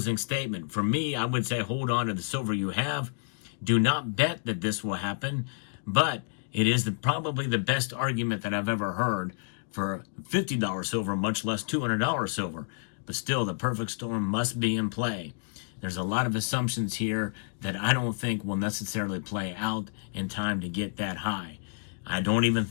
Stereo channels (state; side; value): silent; right; digital silence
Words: statement. For me, I would say hold on to the silver you have. Do not bet that this will happen, but it is probably the best argument that I've ever heard for $50 silver, much less $200 silver. But still, the perfect storm must be in play. There's a lot of assumptions here that I don't think will necessarily play out in time to get that high. I don't even